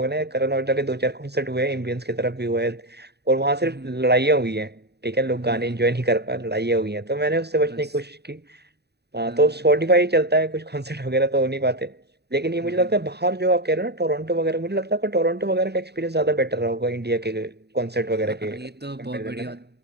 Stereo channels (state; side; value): late; left; 0.48 ms